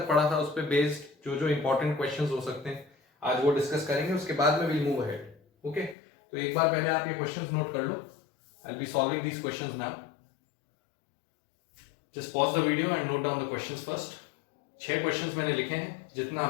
पढ़ा था उस पे बेस्ड जो जो इंपॉर्टेंट क्वेश्चंस हो सकते हैं आज वो डिस्कस करेंगे। उसके बाद में विल मूव अहेड। ओके, तो एक बार पहले आप ये क्वेश्चंस नोट कर लो। I will be solving these questions now. Just pause the video and note down the questions first. 6 questions मैंने लिखे हैं, जितना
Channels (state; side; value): drops out; right; at 6.0 s